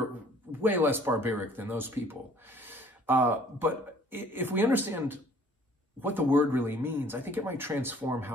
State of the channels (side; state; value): both; normal; correlation 0.55